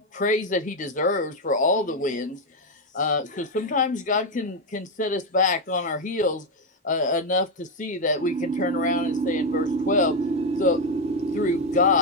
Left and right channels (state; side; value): normal; both; correlation 0.06